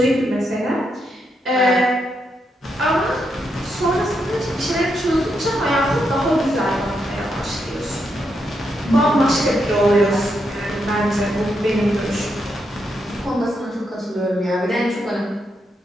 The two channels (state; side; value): normal; both; correlation 0.81